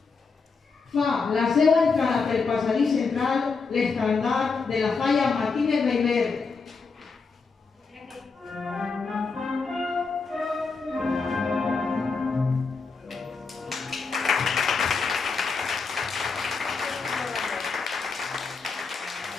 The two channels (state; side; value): quieter; right; 4.7 dB